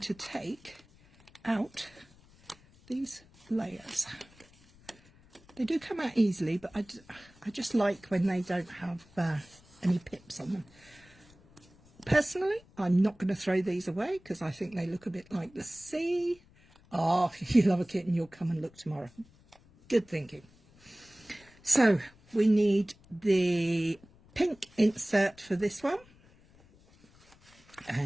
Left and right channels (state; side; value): noise; left; rumble, 27 dB below the sound